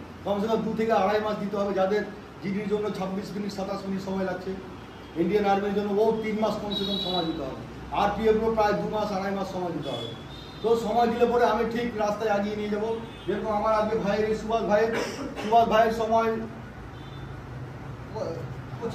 কমসে কম 2 থেকে আড়াই মাস দিতে হবে। যাদের জিডির জন্য 26 মিনিট 27 মিনিট সময় লাগছে, ইন্ডিয়ান আর্মির জন্য 3 মাস কমসে কম সময় দিতে হবে। আরপিএফও প্রায় 2 মাস আড়াই মাস সময় দিতে হবে। তো সময় দিলে পরে আমি ঠিক রাস্তায় এগিয়ে নিয়ে যাবো। যেরকম আমার আজকে ভাইয়ের, সুভাষ ভাইয়ের সময়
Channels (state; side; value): identical; both; correlation 1.00